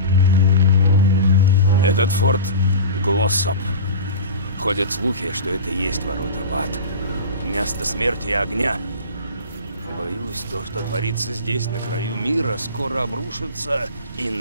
Этот форт Глоссоп. Ходят слухи, что это и есть ворота в ад. Место смерти и огня. Боюсь, то, что творится здесь, на краю мира, скоро обрушится и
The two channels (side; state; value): both; inverted; correlation -0.31